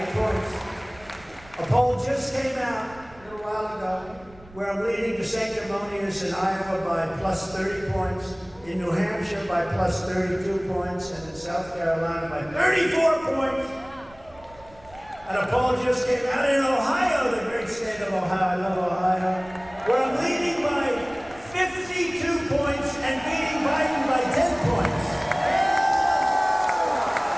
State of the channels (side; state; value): right; noise; rumble, 24 dB below the sound